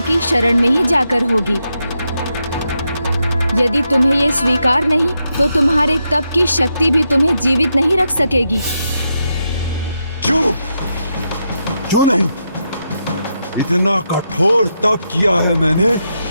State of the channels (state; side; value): inverted; both; correlation -0.84